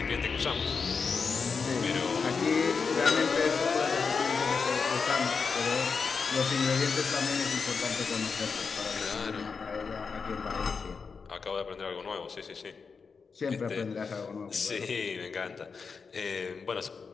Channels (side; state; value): right; quieter; 5.3 dB